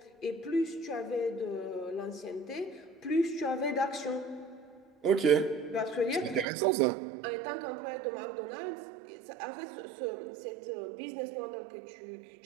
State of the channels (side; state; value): left; drops out; at 6.5 s